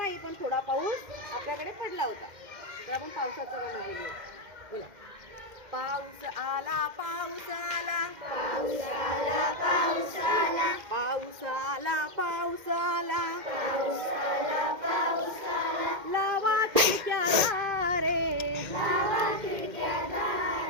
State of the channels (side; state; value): left; late; 2.1 ms